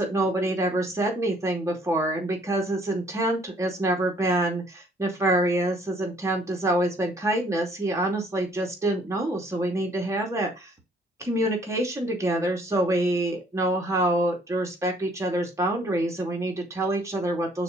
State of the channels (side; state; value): both; normal; correlation 0.61